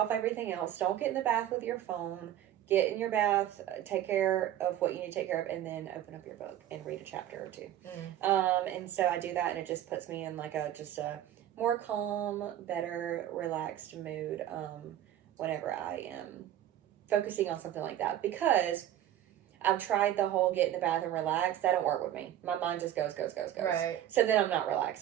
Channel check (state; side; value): quieter; left; 11.9 dB